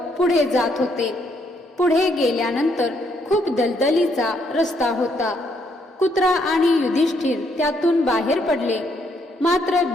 पुढे जात होते. पुढे गेल्यानंतर खूप दलदलीचा रस्ता होता. कुत्रा आणि युधिष्ठिर त्यातून बाहेर पडले, मात्र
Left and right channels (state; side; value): normal; both; correlation 0.72